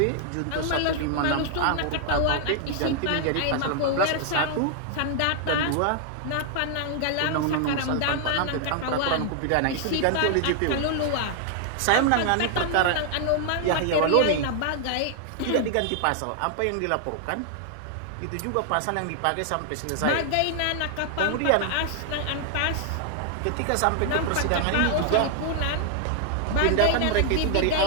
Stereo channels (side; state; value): both; different; correlation 0.00